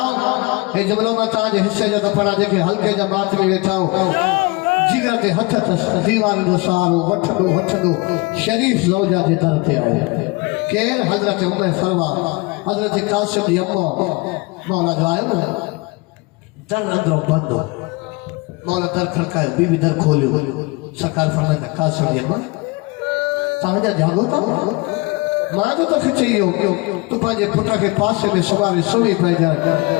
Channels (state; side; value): quieter; right; 25.6 dB